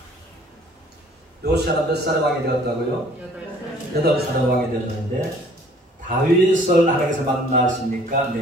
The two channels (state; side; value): normal; both; correlation 0.56